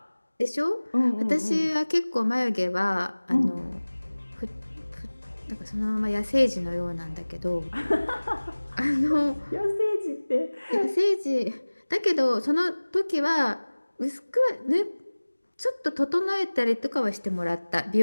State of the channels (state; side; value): inverted; both; correlation -1.00